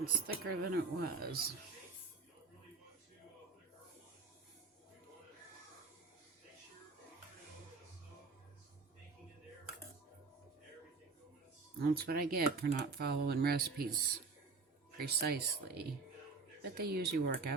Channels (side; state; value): left; quieter; 4.2 dB